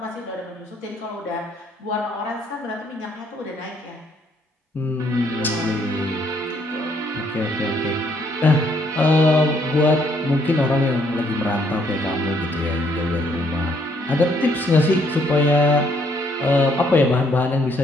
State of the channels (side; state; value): both; normal; correlation 0.68